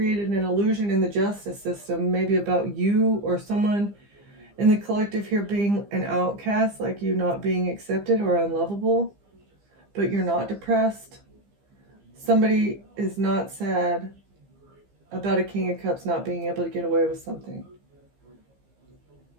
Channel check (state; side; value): late; left; 15 ms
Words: an illusion in the justice system, maybe about you or someone in the collective here being an outcast, like you not being accepted or unlovable, but you're not depressed. Somebody is not sad about a King of Cups not being able to get away with something.